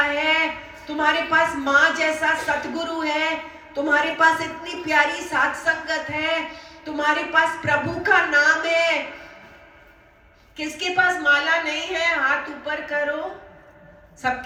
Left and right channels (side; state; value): both; identical; correlation 1.00